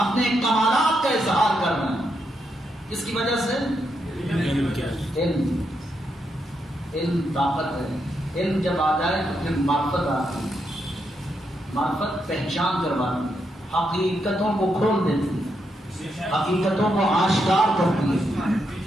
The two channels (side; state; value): both; normal; correlation 0.81